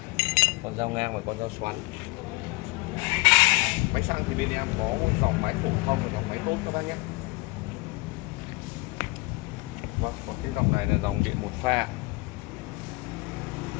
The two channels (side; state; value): right; quieter; 24.5 dB